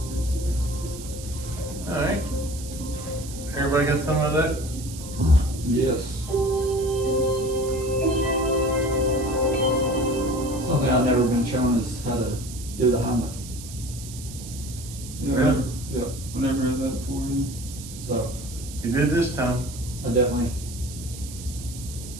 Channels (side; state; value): right; noise; hiss, 13 dB below the sound